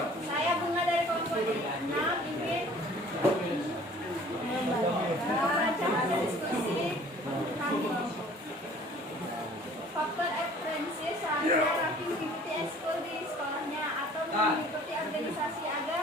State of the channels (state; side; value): normal; both; correlation 0.51